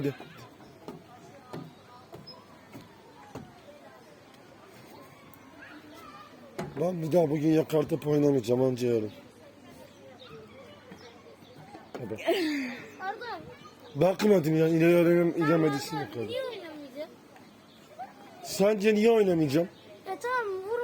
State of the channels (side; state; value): both; identical; correlation 1.00